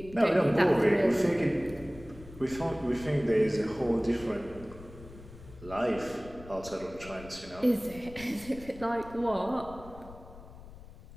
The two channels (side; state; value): left; noise; rumble, 17 dB below the sound